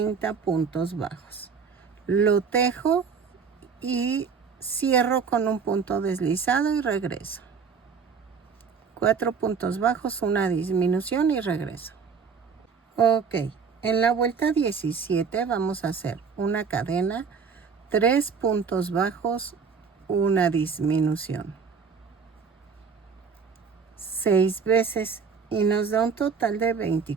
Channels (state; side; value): quieter; left; 5.8 dB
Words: puntos bajos. Lo tejo y cierro con un punto deslizado y regreso. 4 puntos bajos, una disminución y regreso. Ok, en la vuelta 17 vamos a hacer una cadena, 3 puntos bajos, una disminución. 6 veces y nos da un total de